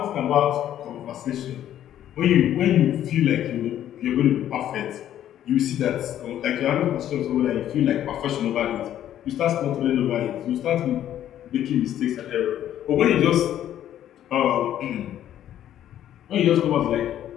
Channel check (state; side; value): quieter; right; 11.4 dB